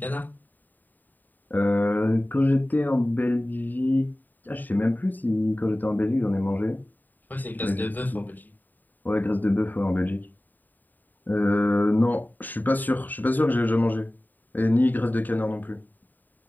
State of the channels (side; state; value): right; late; 0.088 ms